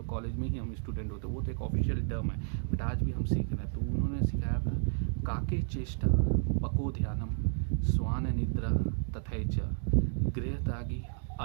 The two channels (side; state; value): left; silent; digital silence